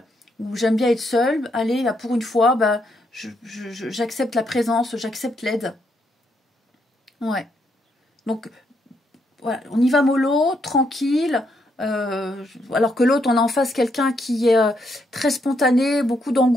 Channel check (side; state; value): both; normal; correlation 0.76